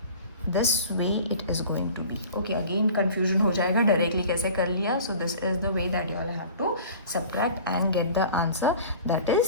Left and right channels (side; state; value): both; inverted; correlation -0.43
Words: this way it is going to be. Okay, again confusion हो जाएगा डायरेक्टली कैसे कर लिया. So this is the way that you all have to subtract and get the answer, that